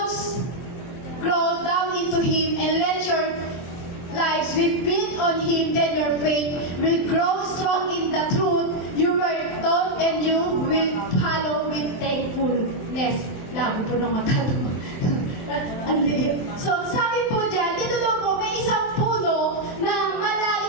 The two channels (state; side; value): late; right; 23 ms